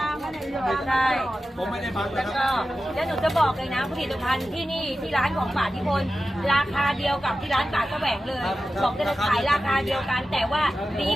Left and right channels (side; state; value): both; normal; correlation 0.93